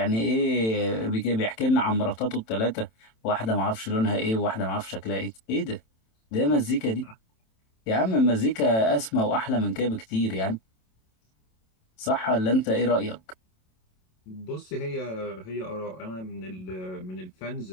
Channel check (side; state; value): right; late; 27 ms